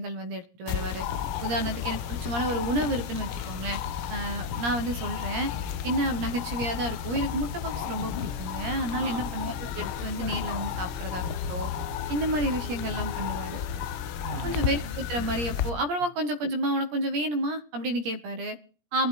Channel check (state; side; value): late; left; 17 ms